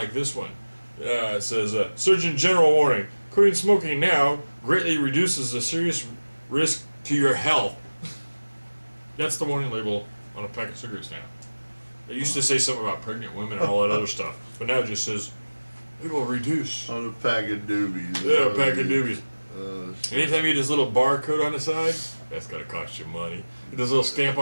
this one. It says, Surgeon General warning, quitting smoking now greatly reduces a serious risk to your health. That's the warning label on a pack of cigarettes now. It used to say something about pregnant women and all that other stuff, but now it just says, it will reduce. On a pack of doobies. Yeah, a pack of doobies. Anytime you get this little barcode on the side, that's going to cost you money. This little stamp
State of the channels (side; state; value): both; inverted; correlation -1.00